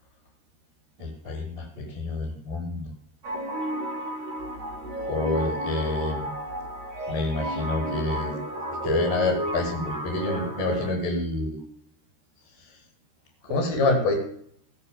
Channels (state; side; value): late; left; 13 ms